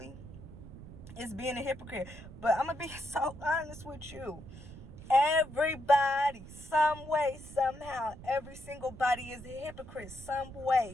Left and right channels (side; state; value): right; noise; rumble, 15 dB below the sound